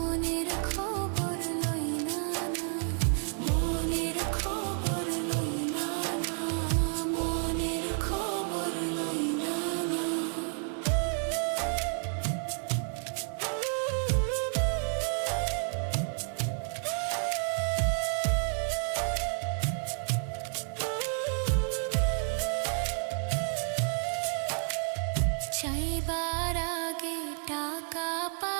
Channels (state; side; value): silent; left; 57 dB below the other